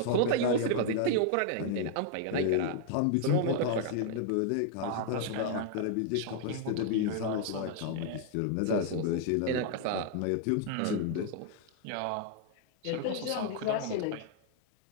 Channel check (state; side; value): different; both; correlation -0.01